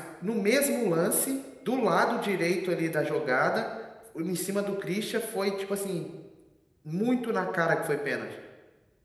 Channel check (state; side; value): identical; both; correlation 1.00